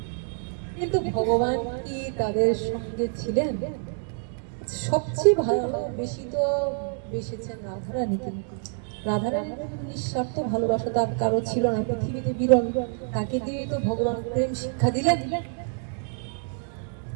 কিন্তু ভগবান কি তাদের সঙ্গে ছিলেন? সবচেয়ে বেশি তো বেসেছেন রাধারানীকে। রাধারানীর নিঃস্বার্থ ভালোবাসা তার কারো ছিল না, পৃথিবীতে বিরল। তাকে দিয়ে তো ভগবান প্রেম শিক্ষা দিলেন।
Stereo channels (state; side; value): silent; left; 56 dB below the other